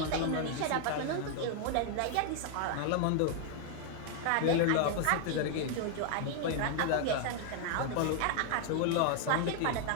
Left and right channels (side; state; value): both; different; correlation 0.00